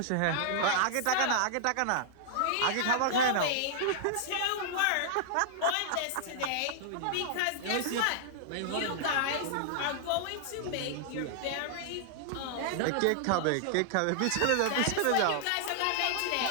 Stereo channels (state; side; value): different; both; correlation -0.01